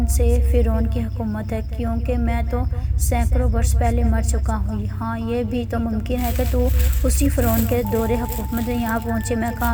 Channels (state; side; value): identical; both; correlation 1.00